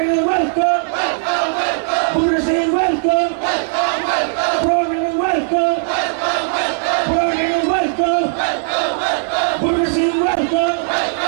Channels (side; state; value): left; silent; digital silence